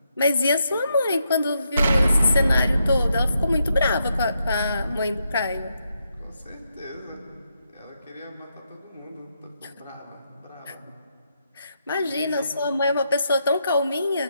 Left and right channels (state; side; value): inverted; both; correlation -0.81